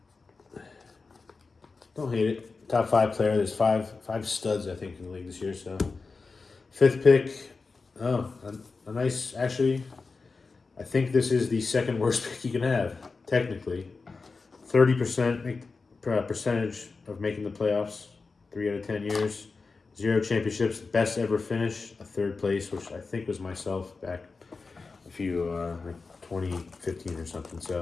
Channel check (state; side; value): quieter; right; 4.2 dB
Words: Don't hate it. Top 5 player. There's five studs, I think, in the league this year. So, 5th pick. Oh, a nice. Actually, I think this is the second worst pick you can have, technically. 30% percentage of making the playoffs, 3 out of 10 years. 0 championships, best ever finish, a 3rd place, which I think was myself back a few, like 2015 or something.